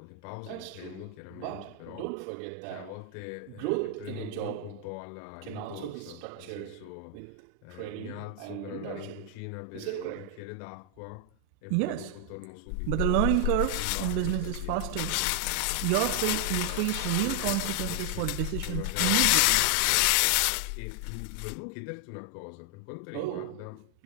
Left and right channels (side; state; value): both; different; correlation 0.00